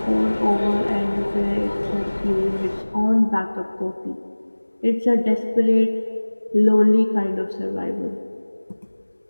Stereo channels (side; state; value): both; inverted; correlation -1.00